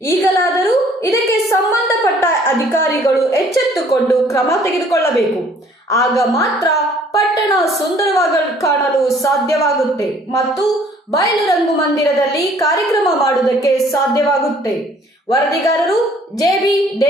ಈಗಲಾದರೂ ಇದಕ್ಕೆ ಸಂಬಂಧಪಟ್ಟ ಅಧಿಕಾರಿಗಳು ಎಚ್ಚೆತ್ತುಕೊಂಡು ಕ್ರಮ ತೆಗೆದುಕೊಳ್ಳಬೇಕು. ಆಗ ಮಾತ್ರ ಪಟ್ಟಣ ಸುಂದರವಾಗಿ ಕಾಣಲು ಸಾಧ್ಯವಾಗುತ್ತೆ ಮತ್ತು ಬಯಲು ರಂಗಮಂದಿರದಲ್ಲಿ ಕಾರ್ಯಕ್ರಮ ಮಾಡುವುದಕ್ಕೆ ಸಾಧ್ಯವಾಗುತ್ತೆ. ವರದಿಗಾರರು JB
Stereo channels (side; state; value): both; normal; correlation 0.58